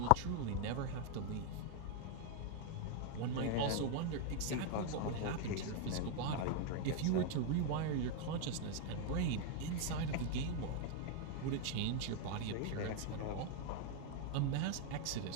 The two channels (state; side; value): different; both; correlation 0.00